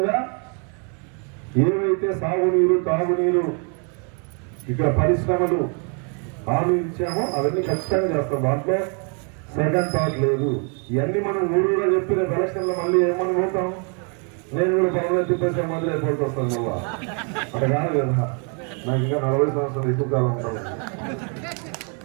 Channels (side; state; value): left; quieter; 38.2 dB